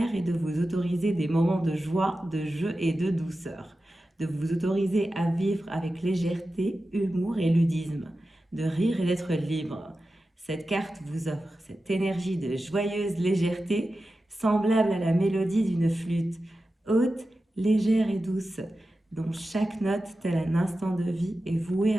et de vous autoriser des moments de joie, de jeu et de douceur. De vous autoriser à vivre avec légèreté, humour et ludisme, de rire et d'être libre. Cette carte vous offre cette énergie de joyeuse légèreté, semblable à la mélodie d'une flûte, haute, légère et douce. dont chaque note, tel un instant de vie, est vouée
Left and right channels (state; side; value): normal; both; correlation 0.93